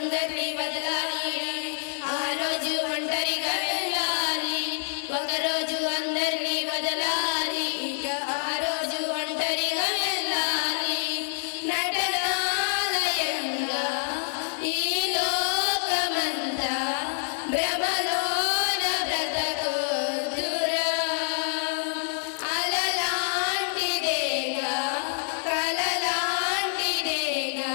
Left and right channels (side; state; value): right; silent; 60 dB below the other